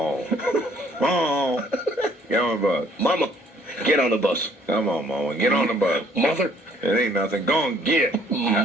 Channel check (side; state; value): both; normal; correlation 0.61